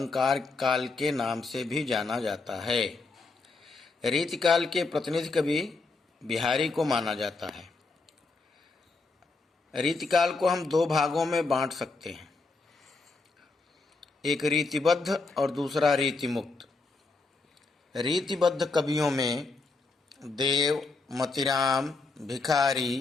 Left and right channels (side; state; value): right; quieter; 3.8 dB